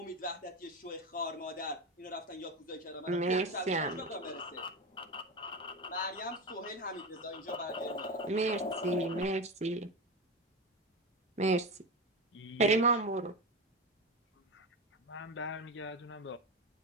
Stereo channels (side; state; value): both; normal; correlation 0.19